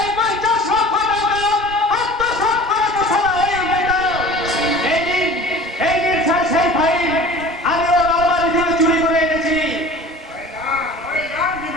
50 লক্ষ টাকা আত্মসাৎ করে বসানো হয়ে যেত। এই দিন স্যার সেই ফাইল আমি ওর আলমারি থেকে চুরি করে এনেছি।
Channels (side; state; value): both; normal; correlation 0.42